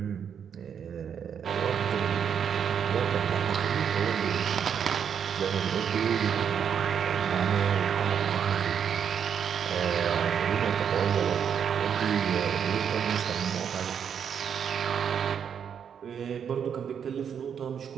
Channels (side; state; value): left; quieter; 7.8 dB